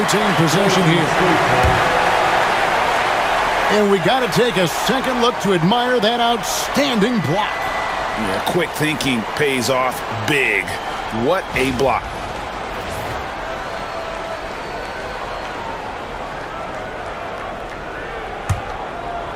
possession here. And we got to take a second look to admire that outstanding block. Yeah, quick thinking pays off big. What a block.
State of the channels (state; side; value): identical; both; correlation 1.00